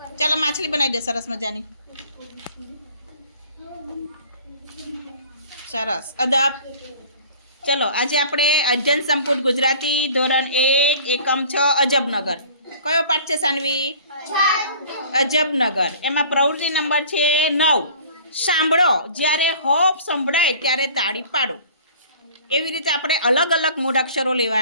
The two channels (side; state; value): both; inverted; correlation -0.48